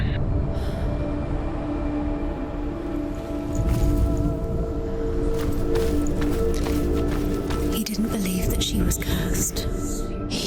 He didn't believe that she was cursed.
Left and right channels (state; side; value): identical; both; correlation 1.00